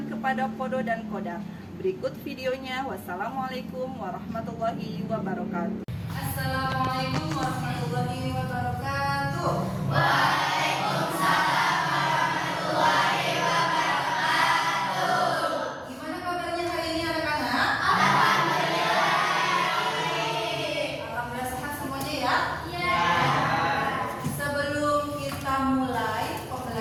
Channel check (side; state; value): both; identical; correlation 1.00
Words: kepada kodo dan kodar. Berikut videonya. Wassalamualaikum warahmatullahi wabarakatuh. Assalamualaikum warahmatullahi wabarakatuh. Waalaikumsalam warahmatullahi wabarakatuh. Gimana kabarnya hari ini anak-anak? Alhamdulillah. Alhamdulillah sehat semuanya ya? Ya. Sebelum kita mulai